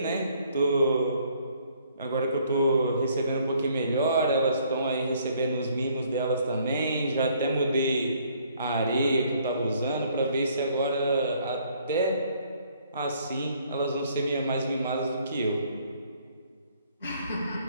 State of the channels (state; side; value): inverted; both; correlation -0.64